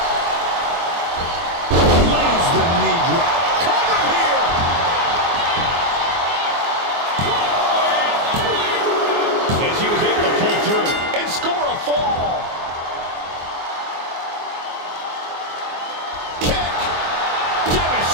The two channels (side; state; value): left; late; 24 ms